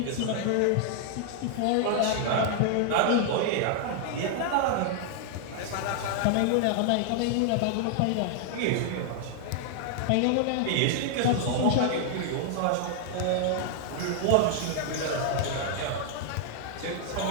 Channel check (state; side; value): different; both; correlation -0.01